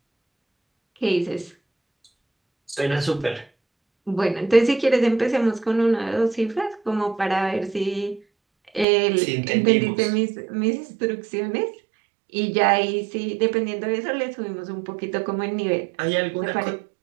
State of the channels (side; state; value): left; drops out; at 8.8 s